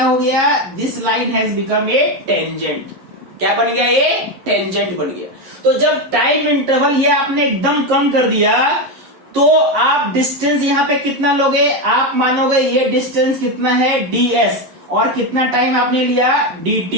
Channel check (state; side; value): late; left; 11 ms